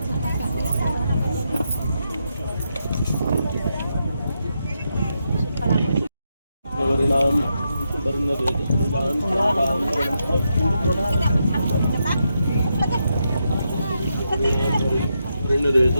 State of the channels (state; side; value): inverted; both; correlation -0.83